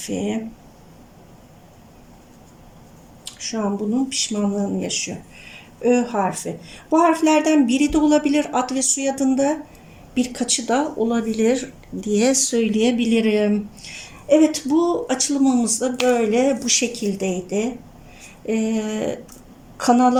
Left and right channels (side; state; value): both; identical; correlation 1.00